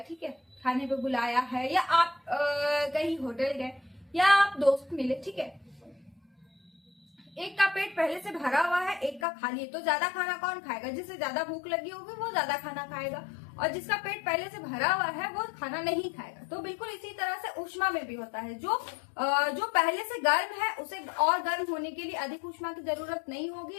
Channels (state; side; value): drops out; right; at 9.2 s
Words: है, खाने पे बुलाया है, या आप कहीं होटल गए या आप दोस्त मिले, ठीक है। एक का पेट पहले से भरा हुआ है, एक का खाली है, तो ज्यादा खाना कौन खाएगा? जिसे ज्यादा भूख लगी होगी वो ज्यादा खाना खाएगा, और जिसका पेट पहले से भरा हुआ है वो खाना नहीं खाएगा। तो बिल्कुल इसी तरह से ऊष्मा में भी होता है। जो पहले से गर्म है उसे और गर्म होने के लिए अधिक ऊष्मा की जरूरत नहीं होगी,